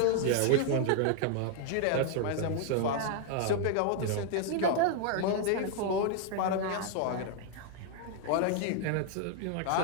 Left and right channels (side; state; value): both; different; correlation 0.00